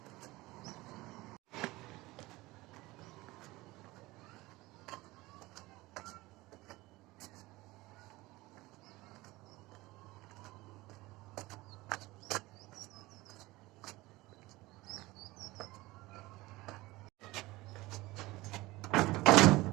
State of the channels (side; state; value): left; quieter; 20.1 dB